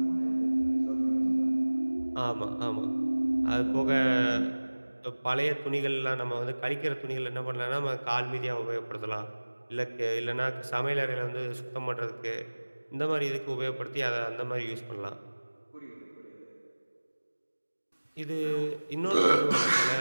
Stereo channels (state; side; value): inverted; both; correlation -1.00